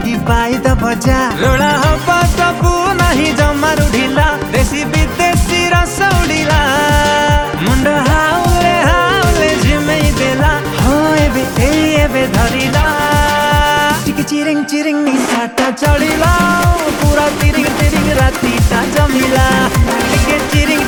पाई द भजा रोड़ा हवा तबु नहीं जमारू ढीला देसी विदेशी रस उड़ीला मुंड हाउले हाउले झिमेई देला हो एबे धरिला टिके चिरिंग चिरिंग निसाटा चढ़िला पूरा तिरिंग तिरिंग रातीटा जमिला टिके चिरिंग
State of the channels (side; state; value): both; identical; correlation 1.00